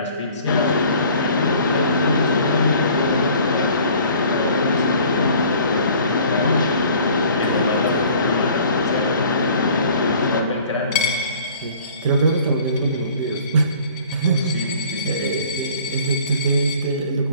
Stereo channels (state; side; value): inverted; both; correlation -0.51